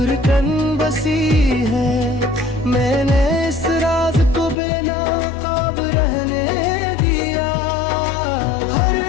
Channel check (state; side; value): drops out; right; at 4.5 s